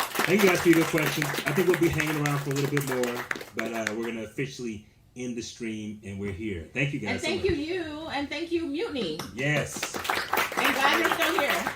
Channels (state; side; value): identical; both; correlation 1.00